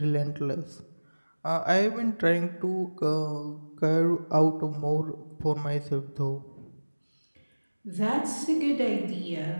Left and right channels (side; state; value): both; inverted; correlation -1.00